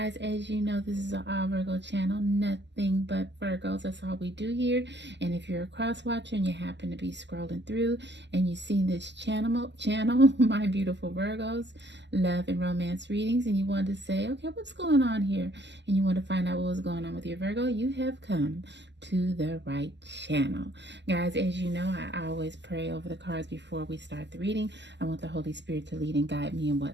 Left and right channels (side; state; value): left; late; 0.51 ms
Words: as you know, this is an all Virgo channel. Nothing but Virgos. That's all we do here. And if you're a cross watcher and you happen to be scrolling through and you've seen this channel, my beautiful Virgos, love and romance readings, and you want to say, okay, what's going on here, and you want to find out what was going on with your Virgo, you have come to the right channel. Guys, as you know, I always pray over the cards before we start the reading. I want the Holy Spirit to lead and guide me in what